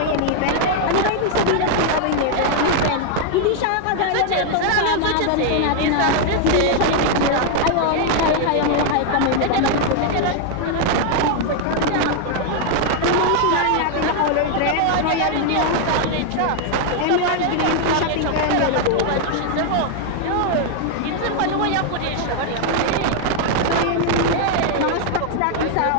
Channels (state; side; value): different; both; correlation 0.00